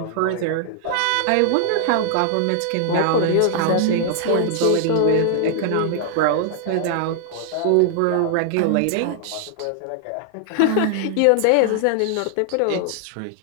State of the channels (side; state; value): both; different; correlation 0.00